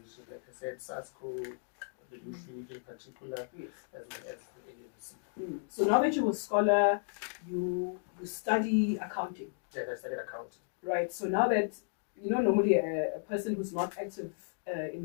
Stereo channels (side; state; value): right; silent; digital silence